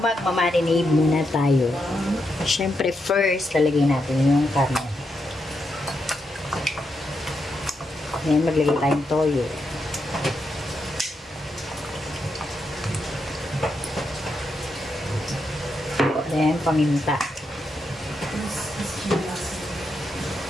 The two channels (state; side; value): normal; both; correlation 0.83